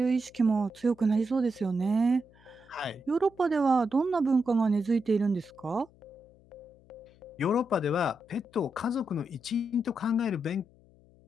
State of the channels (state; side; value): noise; left; hum, 28 dB below the sound